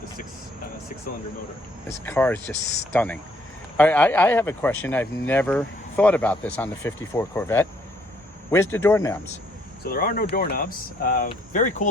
the six-cylinder motor. This car is just stunning. I have a question. I've never thought about this on the 54 Corvette. Where's the doorknobs? So there are no doorknobs. Very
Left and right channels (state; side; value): normal; both; correlation 0.66